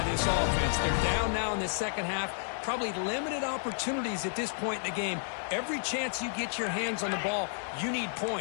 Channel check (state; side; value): silent; right; digital silence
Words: this offense. They're down now in the second half. Probably limited opportunities at this point in the game. Every chance you get your hands on the ball, you need